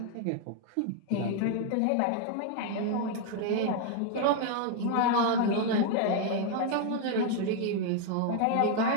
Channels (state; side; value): different; both; correlation 0.01